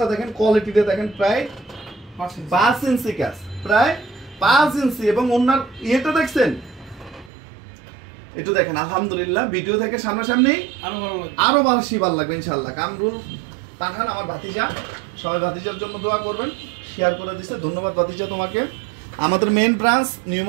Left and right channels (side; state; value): left; drops out; at 7.3 s